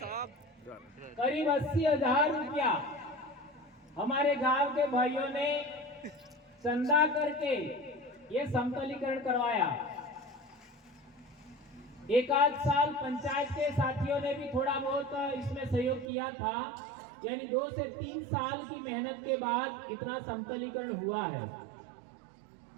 करीब 80,000 रुपया हमारे गांव के भाइयों ने चंदा करके ये समतलीकरण करवाया। एक आध साल पंचायत के साथियों ने भी थोड़ा बहुत इसमें सहयोग किया था, यानी 2 से 3 साल की मेहनत के बाद इतना समतलीकरण हुआ है।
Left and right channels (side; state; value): left; drops out; at 16.1 s